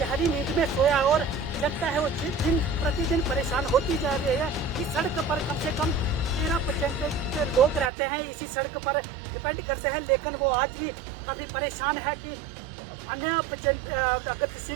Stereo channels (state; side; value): drops out; left; at 7.9 s